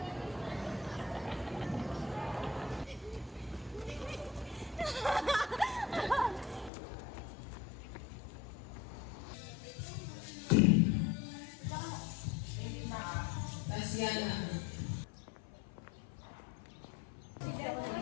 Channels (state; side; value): drops out; right; at 6.7 s